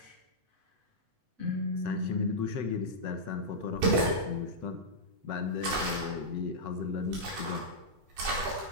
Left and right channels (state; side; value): late; left; 8.0 ms